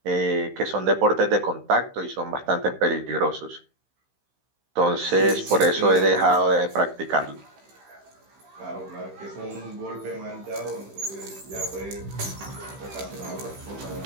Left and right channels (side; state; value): left; late; 15 ms